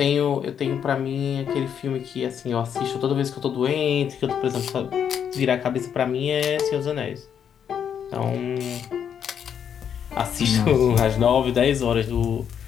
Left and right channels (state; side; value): quieter; right; 8.3 dB